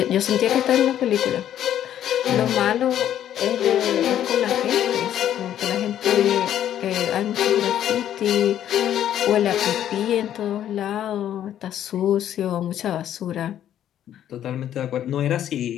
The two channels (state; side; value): quieter; right; 10.9 dB